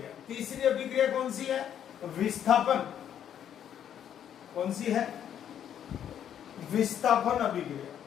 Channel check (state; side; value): quieter; right; 9.6 dB